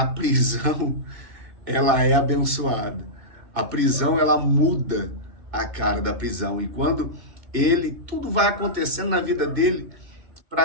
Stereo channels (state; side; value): late; left; 2.2 ms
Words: prisão, ela é abençoada. A prisão, ela muda a cara da prisão. E quando tudo vai acontecendo na vida dele,